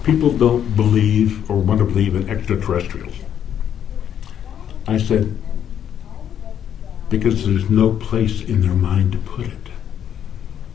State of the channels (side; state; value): right; quieter; 9.4 dB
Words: people don't believe or want to believe in extraterrestrials? I said, because there's no place in their mind to put it.